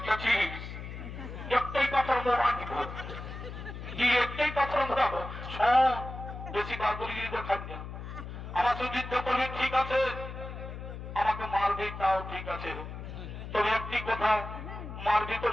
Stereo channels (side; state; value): left; noise; hum, 9 dB below the sound